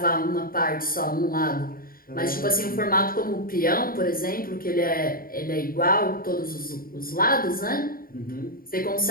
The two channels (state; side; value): late; right; 0.42 ms